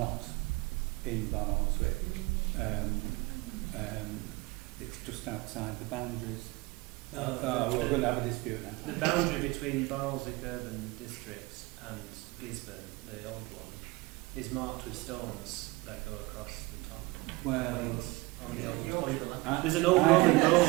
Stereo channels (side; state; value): left; quieter; 23.4 dB